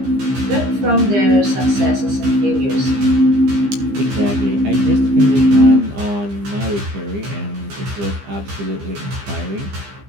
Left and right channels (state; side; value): late; left; 15 ms